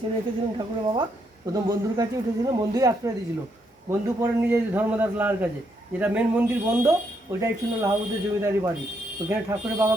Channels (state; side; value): normal; both; correlation 0.76